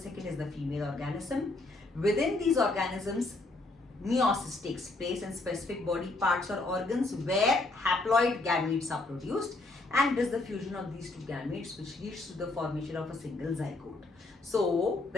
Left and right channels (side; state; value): right; quieter; 3.0 dB